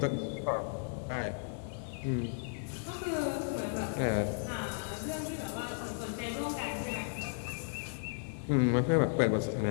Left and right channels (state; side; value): silent; right; 55 dB below the other